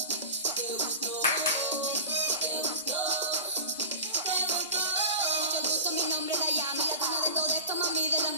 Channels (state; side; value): inverted; both; correlation -0.33